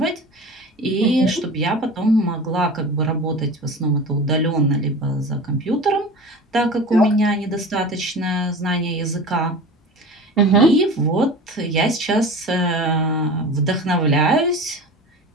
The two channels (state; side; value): normal; both; correlation 0.35